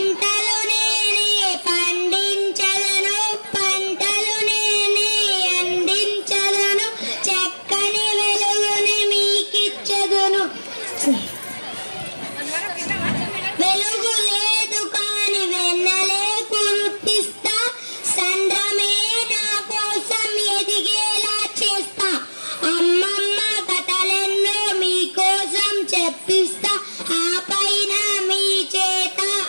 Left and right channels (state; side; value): inverted; both; correlation -1.00